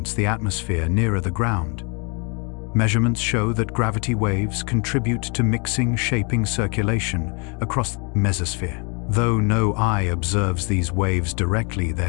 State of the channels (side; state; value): right; quieter; 34.4 dB